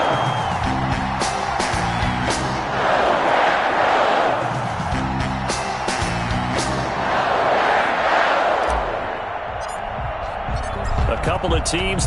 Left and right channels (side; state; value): both; identical; correlation 1.00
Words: Couple of teams